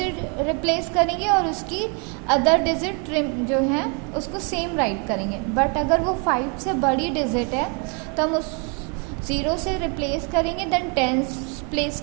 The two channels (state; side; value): quieter; left; 36.1 dB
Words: रिप्लेस करेंगे और उसकी अदर डिजिट जो है उसको सेम राइट करेंगे। बट अगर वो 5 से बड़ी डिजिट है तो हम उस 0 से रिप्लेस करेंगे, देन टेंस प्लेस